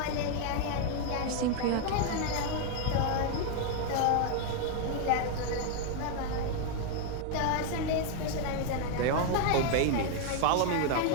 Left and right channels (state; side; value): different; both; correlation 0.00